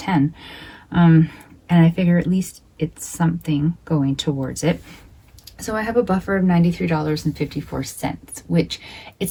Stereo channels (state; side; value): identical; both; correlation 1.00